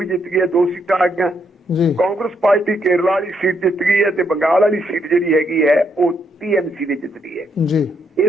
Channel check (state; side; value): normal; both; correlation 0.75